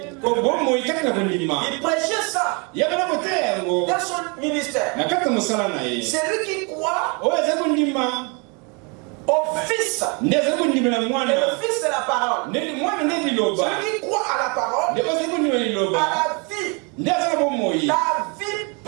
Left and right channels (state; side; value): quieter; left; 32.7 dB